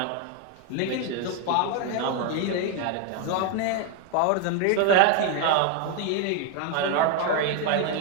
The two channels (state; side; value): different; both; correlation 0.01